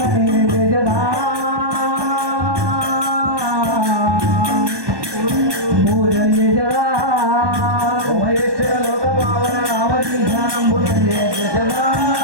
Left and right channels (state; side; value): late; left; 1.2 ms